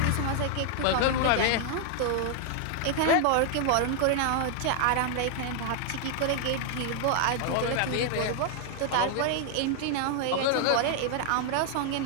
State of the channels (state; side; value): different; both; correlation 0.00